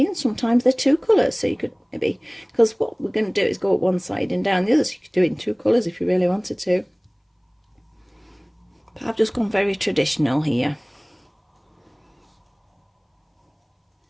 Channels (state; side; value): identical; both; correlation 1.00